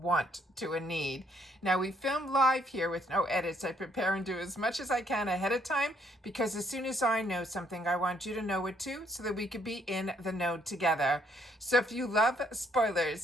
to a need. Now we film live here with no edits. I prepare and do as much as I can ahead of time because as soon as I know something I want you to know it too so that we could be in the know together. So if you love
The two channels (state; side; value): normal; both; correlation 0.69